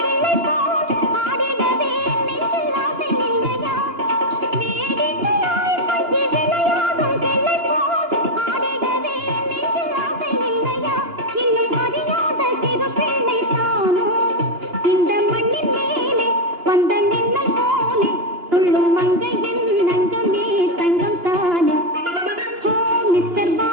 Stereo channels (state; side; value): late; left; 2.9 ms